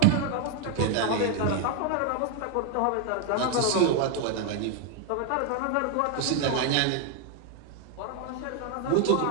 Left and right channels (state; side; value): different; both; correlation 0.00